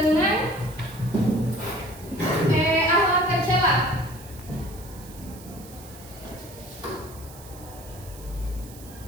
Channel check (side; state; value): right; noise; hiss, 19 dB below the sound